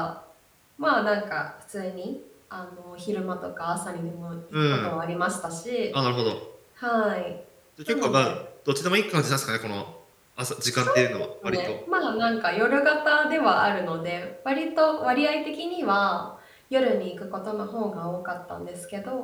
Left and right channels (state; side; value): identical; both; correlation 1.00